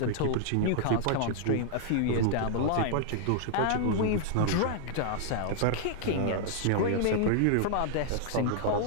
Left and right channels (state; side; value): different; both; correlation -0.01